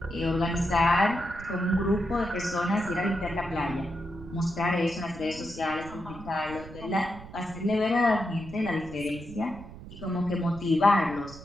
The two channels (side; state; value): right; noise; rumble, 15 dB below the sound